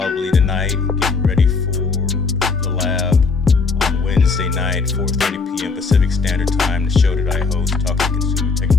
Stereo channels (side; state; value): right; quieter; 4.6 dB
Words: tonight, getting ready for the lab on Wednesday night, 4:30 p.m. Pacific Standard Time, the show that I host, talking consumer